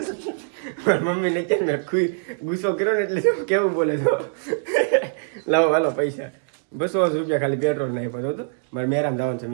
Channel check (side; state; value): left; silent; digital silence